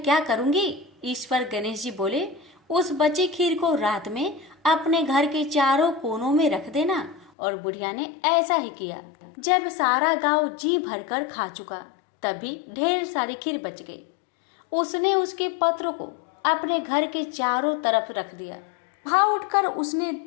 क्या करूंगी? इस पर गणेश जी बोले, उस बची खीर को रात में अपने घर के चारों कोनों में रख देना। और बुढ़िया ने ऐसा ही किया। जब सारा गांव जी भरकर खा चुका तभी ढेर सारी खीर बच गई। उसने उसके पत्र को अपने घर के चारों तरफ रख दिया। वहां उठकर उसने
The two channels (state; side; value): drops out; right; at 7.3 s